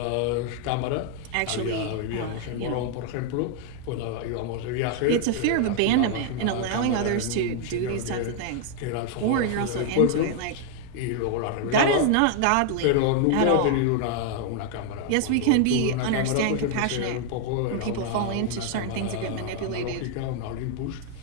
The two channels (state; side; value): different; both; correlation 0.00